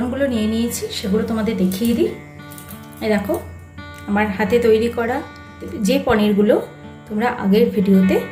নিয়ে নিয়েছি সেগুলো তোমাদের দেখিয়ে দিই। এই দেখো, আমার হাতে তৈরি করা যে পনিরগুলো তোমরা আগের ভিডিওতে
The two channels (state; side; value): identical; both; correlation 1.00